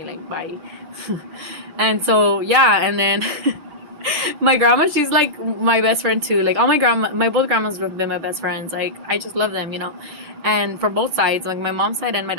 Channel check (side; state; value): left; late; 6.2 ms